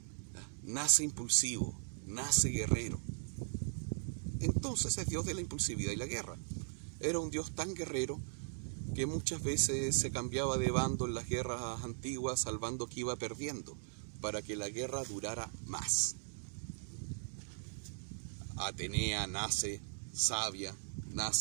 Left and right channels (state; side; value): silent; left; digital silence